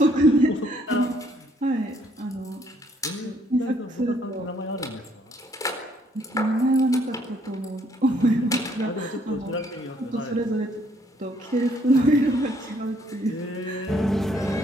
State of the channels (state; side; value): normal; both; correlation 0.66